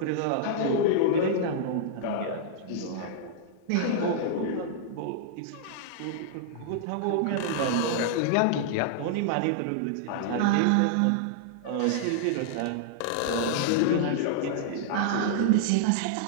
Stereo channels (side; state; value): both; different; correlation -0.01